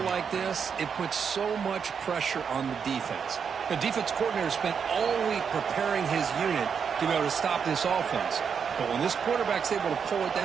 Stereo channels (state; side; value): quieter; left; 6.7 dB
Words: like this, it puts so much pressure on the defense. The defense coordinator spent all week preparing his unit to be able to stop this offense. But when this quarterback's able to pull it